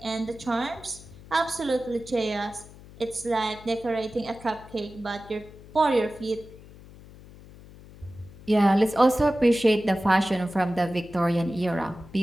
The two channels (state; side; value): noise; left; hum, 20 dB below the sound